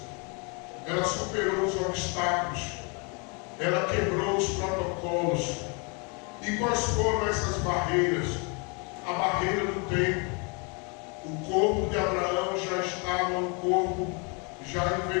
Ela superou os obstáculos. Ela quebrou os protocolos. E quais foram essas barreiras? A barreira do tempo. O corpo de Abraão já estava um corpo já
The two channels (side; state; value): right; quieter; 33.4 dB